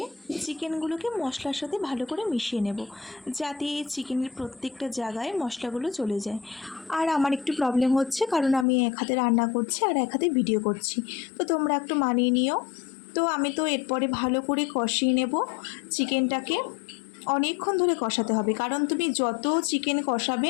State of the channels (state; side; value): drops out; right; at 8.7 s